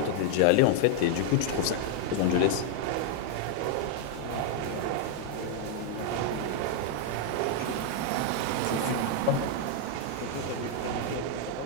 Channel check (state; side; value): different; both; correlation 0.00